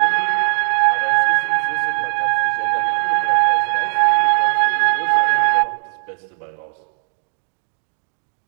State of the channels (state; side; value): silent; left; digital silence